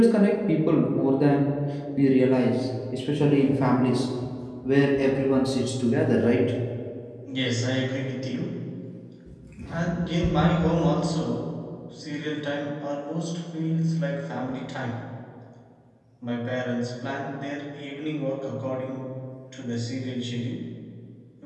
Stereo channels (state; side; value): identical; both; correlation 1.00